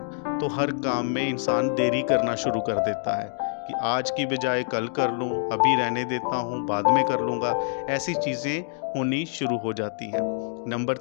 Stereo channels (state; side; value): silent; right; digital silence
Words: तो हर काम में इंसान देरी करना शुरू कर देता है कि आज की बजाय कल कर लूं, अभी रहने देता हूं, बाद में कर लूँगा। ऐसी चीज़ें होनी शुरू हो जाती हैं। नंबर